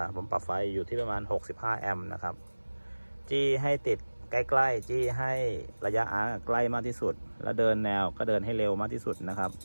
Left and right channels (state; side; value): inverted; both; correlation -1.00